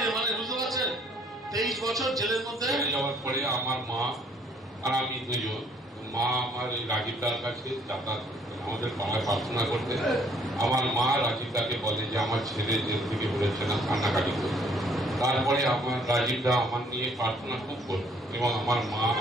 মানে বুঝতে পারছেন, 23 বছর জেলের মধ্যে। জেলে যাওয়ার পরে আমার মা আর আমি দুজন, মা আমার এই রাজীবদার কাছে যাতায়াত করতেন, আমাদের পাড়ায় প্রার্থনা করতে। আমার মা রাজীবদাকে বলে যে আমার ছেলে জেল থেকে বেরোচ্ছে না, কান্নাকাটি করছে। তারপরে আমার রাজীবদা আমার নিয়ে প্রার্থনা খুব করত এবং আমার মা,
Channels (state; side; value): normal; both; correlation 0.63